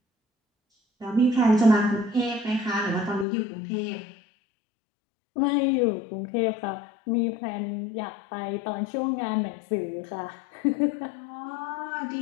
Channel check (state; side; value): drops out; right; at 3.2 s